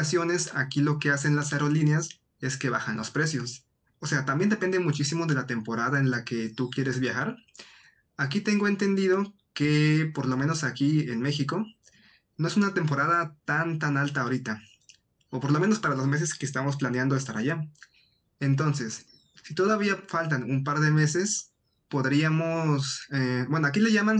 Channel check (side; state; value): both; identical; correlation 1.00